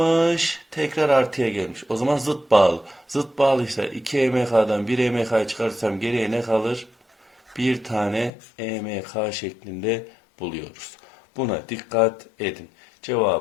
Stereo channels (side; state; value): right; drops out; at 8.3 s